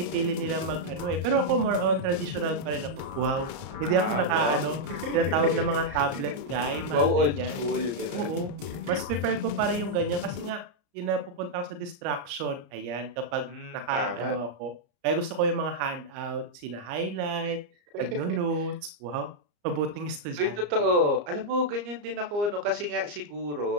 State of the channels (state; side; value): late; left; 34 ms